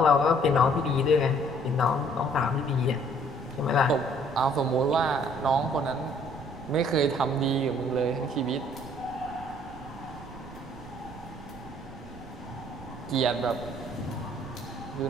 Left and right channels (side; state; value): right; noise; rumble, 19 dB below the sound